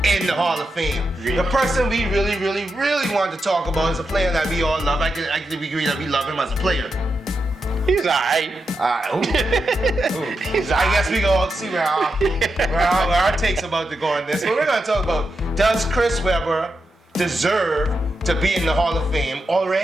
in the Hall of Fame. The person we really want to talk about is a player that we all love. I can agree that we love him as a player. He's alright. I guess we go see where our take's about to go on this. But we're going to talk about, does Chris Webber deserve to be in the Hall of Fame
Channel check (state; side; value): normal; both; correlation 0.87